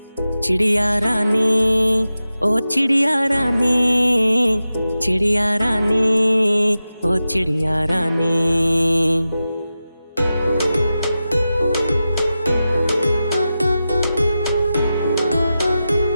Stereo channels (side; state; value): both; inverted; correlation -0.93